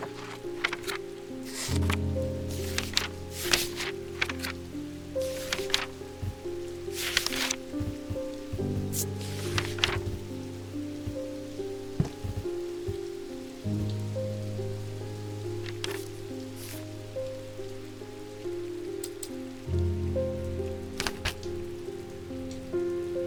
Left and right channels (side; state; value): both; identical; correlation 1.00